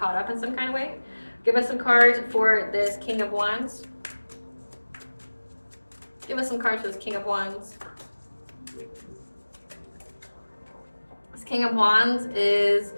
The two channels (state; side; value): inverted; both; correlation -1.00